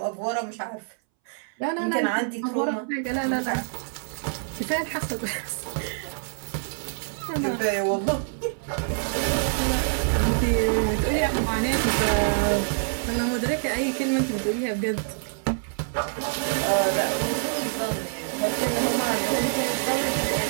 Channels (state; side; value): silent; left; 61 dB below the other